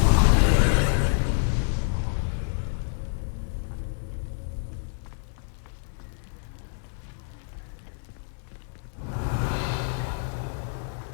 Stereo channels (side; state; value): right; silent; digital silence